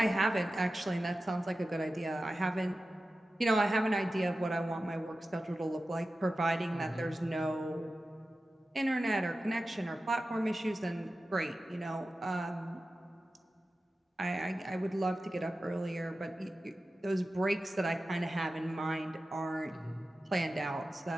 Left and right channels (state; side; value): normal; both; correlation 0.94